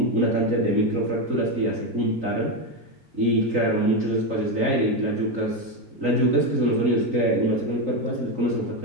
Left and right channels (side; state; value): left; late; 3.9 ms